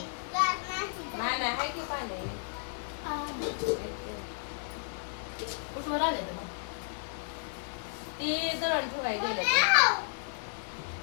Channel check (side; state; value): right; silent; 56 dB below the other